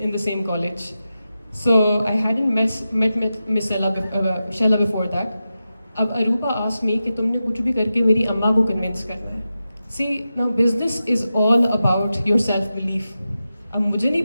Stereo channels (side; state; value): both; inverted; correlation -0.91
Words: the same college. So I hadn't met Miss Shella before that. Ab Aruba asked me कि तुमने कुछ भी करके मेरी अम्मा को convince करना है. See, now business is all about your self-belief. अब मुझे नहीं